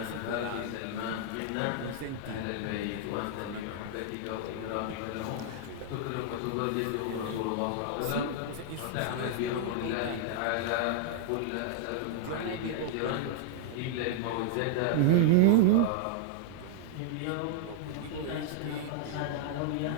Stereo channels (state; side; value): different; both; correlation -0.01